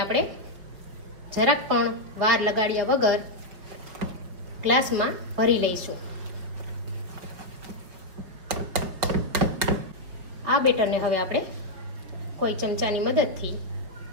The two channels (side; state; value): left; late; 5.4 ms